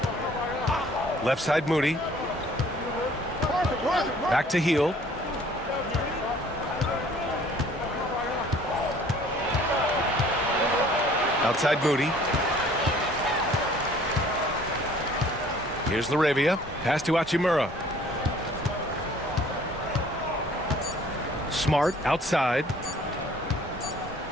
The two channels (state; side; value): normal; both; correlation 0.55